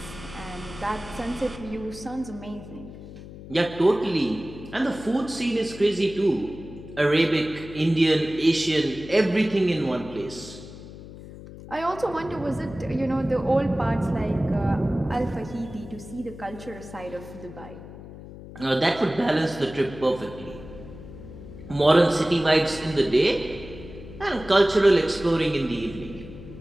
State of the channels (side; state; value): left; noise; hum, 15 dB below the sound